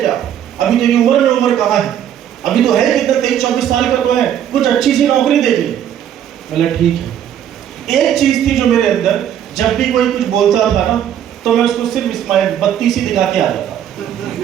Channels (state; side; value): quieter; left; 10.0 dB